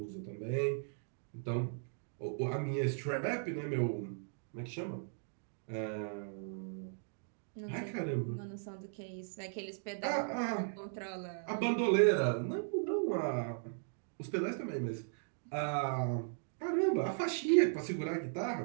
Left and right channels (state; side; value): silent; left; digital silence